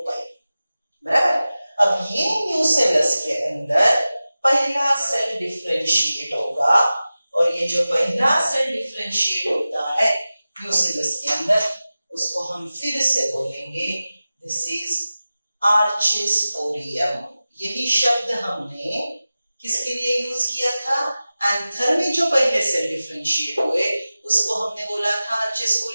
बराबर। अब ये न्यूसेलस के अंदर पहला सेल डिफरेंशिएट होगा, और ये जो पहला सेल डिफरेंशिएट होता है न्यूसेलस के अंदर, उसको हम फिर से बोलेंगे दिस इज आर्चेस्पोरियम। यही शब्द हमने किसके लिए यूज किया था? एंथर में जो पहले सेल डिफरेंशिएट हुए उसको हमने बोला था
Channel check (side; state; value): both; inverted; correlation -0.96